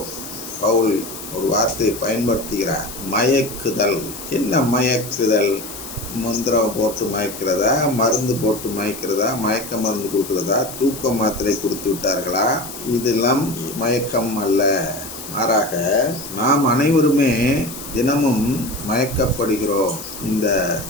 பவுல் ஒரு வார்த்தை பயன்படுத்துகிறார், மயக்குதல். என்ன மயக்குதல்? மந்திரம் போட்டு மயக்கிறதா, மருந்து போட்டு மயக்கிறதா, மயக்க மருந்து கொடுக்கிறதா, தூக்க மாத்திரை கொடுத்து விட்டார்களா? இதெல்லாம் மயக்கம் அல்ல. மாறாக நாம் அனைவருமே தினமும் மயக்கப்படுகிறோம். இந்த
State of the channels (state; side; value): noise; left; hiss, 11 dB below the sound